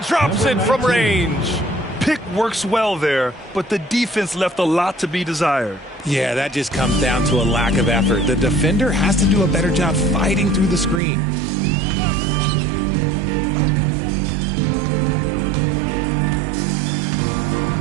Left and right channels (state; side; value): drops out; left; at 11.0 s